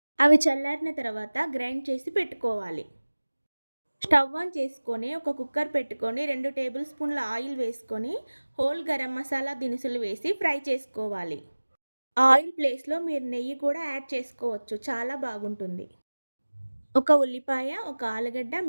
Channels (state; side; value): inverted; both; correlation -1.00